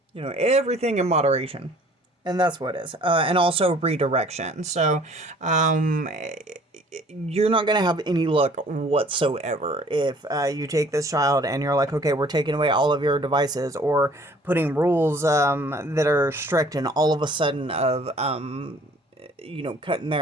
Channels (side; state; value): both; normal; correlation 0.54